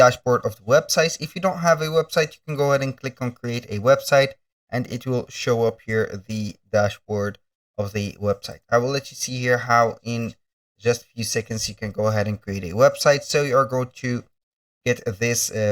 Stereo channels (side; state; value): both; identical; correlation 1.00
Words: of the website. If you don't have a website, you can go ahead and click on create a website, and it will show up here the dashboard of the website. I will let you see here how in just a few seconds you can go ahead and create a website. So you are going to get this